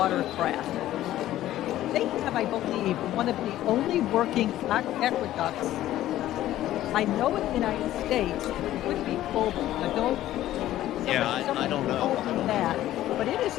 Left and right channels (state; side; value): quieter; right; 13.8 dB